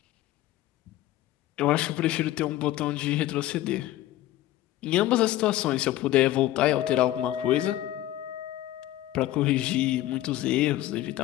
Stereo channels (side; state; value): right; quieter; 14.7 dB